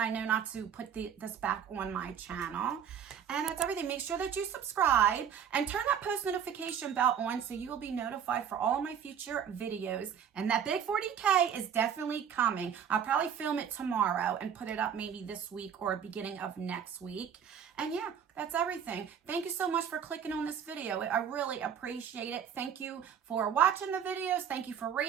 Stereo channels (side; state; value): left; quieter; 8.2 dB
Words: know not to put this back on my channel. And that's everything. Make sure that you subscribe and turn that post notification bell on so you will be notified for all of my future videos. And that big 40K is definitely coming. I'll probably film it tomorrow and put it up maybe this week or beginning of next week. And yeah, that's everything. Thank you so much for clicking on this video. I really appreciate it. Thank you for watching the videos. Thank you for